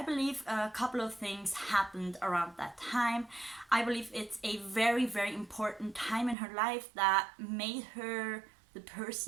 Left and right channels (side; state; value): left; drops out; at 6.4 s